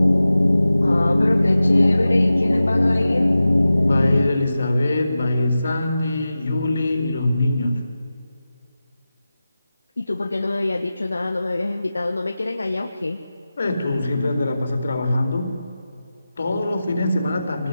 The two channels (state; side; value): inverted; both; correlation -0.94